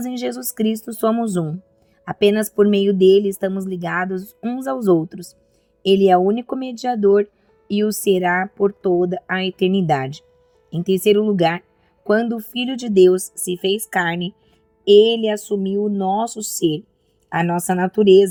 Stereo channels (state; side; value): identical; both; correlation 1.00